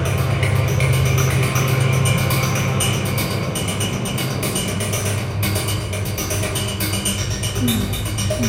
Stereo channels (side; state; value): both; identical; correlation 1.00